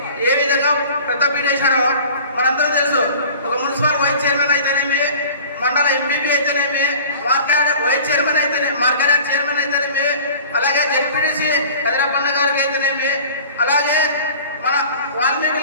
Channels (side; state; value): both; inverted; correlation -0.44